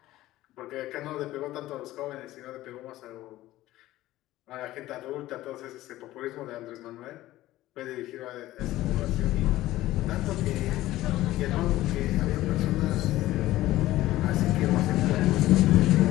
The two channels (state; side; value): quieter; right; 15.9 dB